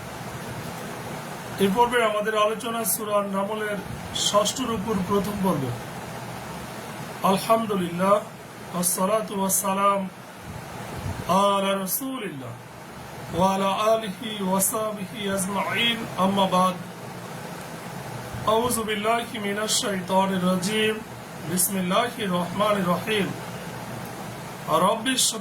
এই পর্বে আমাদের আলোচনা সূরা নামলের ৬ষ্ঠ রুকুর প্রথম পর্ব। আলহামদুলিল্লাহ ওয়াসসালাতু ওয়াসসালাম আলা রাসূলিল্লাহ ওয়া আলা আলিহি ওয়া সাহবিহি আজমাইন, আম্মা বাদ। আউযু বিল্লাহি মিনাশ শাইতানির রাজীম। বিসমিল্লাহির রহমানির রহিম। রব্বি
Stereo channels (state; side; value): identical; both; correlation 1.00